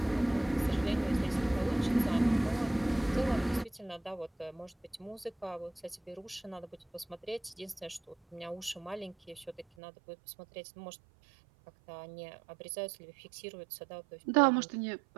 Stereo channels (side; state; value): left; drops out; at 9.7 s